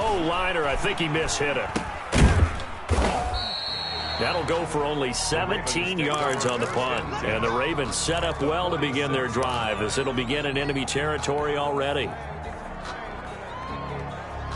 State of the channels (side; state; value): both; identical; correlation 1.00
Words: liner. I think he mishit it. That'll go for only 17 yards on the punt. And the Ravens set up well to begin their drive, as it'll begin in enemy territory already.